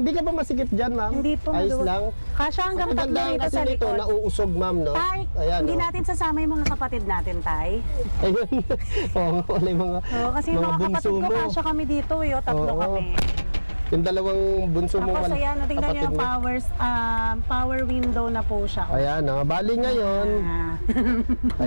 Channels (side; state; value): both; inverted; correlation -1.00